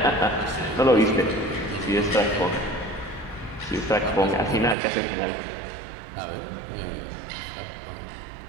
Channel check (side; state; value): left; drops out; at 4.8 s